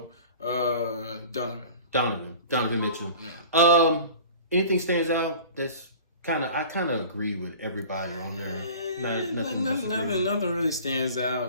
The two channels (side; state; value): both; inverted; correlation -0.41